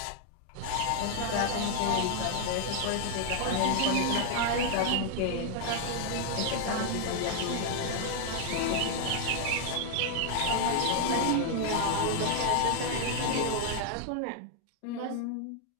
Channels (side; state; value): both; different; correlation 0.00